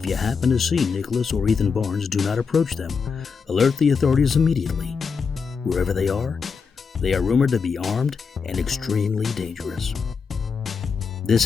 you happen to see Nicholas or Ethan Barnes, do not approach them. Alert the authorities immediately. Wherever they are rumored to be armed and extremely dangerous. This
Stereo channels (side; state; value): right; quieter; 5.5 dB